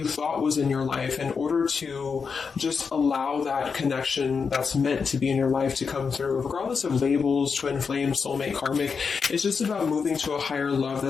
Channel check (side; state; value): right; quieter; 5.6 dB